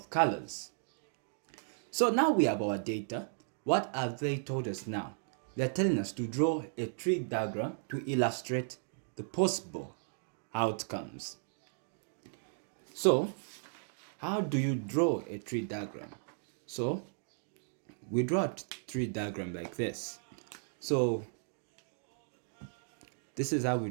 colors. So now we have our data. What have they told us now? They're telling us to draw a tree diagram to illustrate the possible outcomes. So, how do you draw a tree diagram? So, we draw a tree diagram like this. So, this is how we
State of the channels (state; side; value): silent; left; digital silence